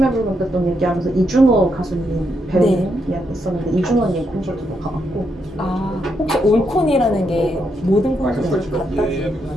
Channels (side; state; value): both; normal; correlation 0.80